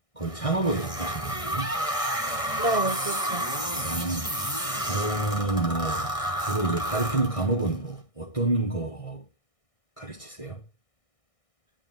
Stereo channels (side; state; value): right; late; 1.6 ms